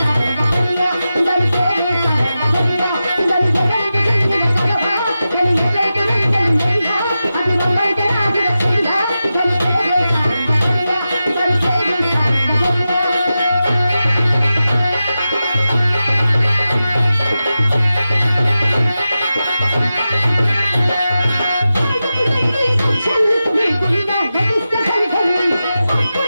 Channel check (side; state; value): both; inverted; correlation -0.92